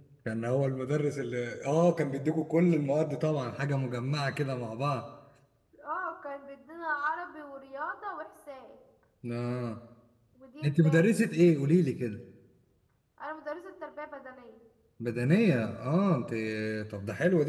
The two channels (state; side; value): identical; both; correlation 1.00